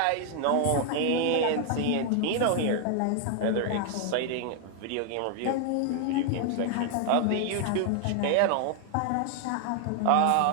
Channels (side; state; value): both; different; correlation 0.00